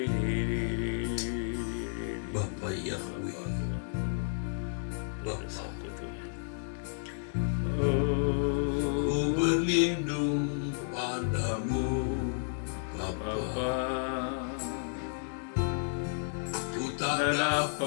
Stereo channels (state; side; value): silent; right; digital silence